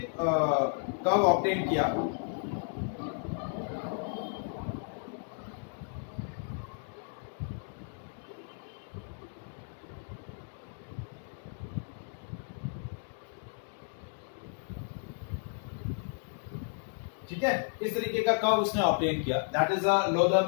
कर्व ऑब्टेन किया। ठीक है, इस तरीके का कर्व उसने ऑब्टेन किया। That is a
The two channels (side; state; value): right; silent; 56 dB below the other